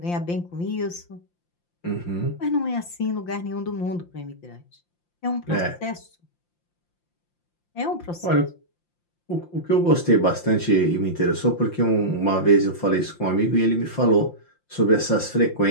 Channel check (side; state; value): right; late; 5.8 ms